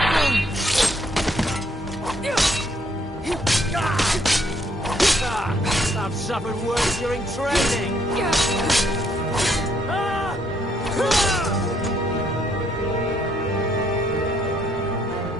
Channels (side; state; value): both; normal; correlation 0.69